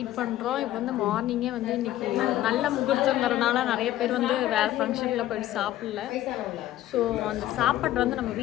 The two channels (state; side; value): quieter; right; 13.9 dB